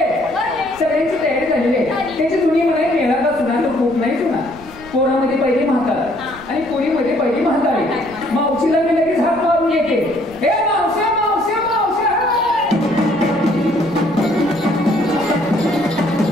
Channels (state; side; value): noise; right; rumble, 20 dB below the sound